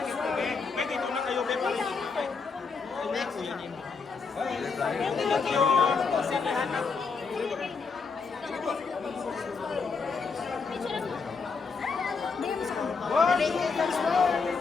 May dito na kayo, may pala dito. Next, kuya niyo. Thank you. Sinihan na.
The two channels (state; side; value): quieter; right; 4.9 dB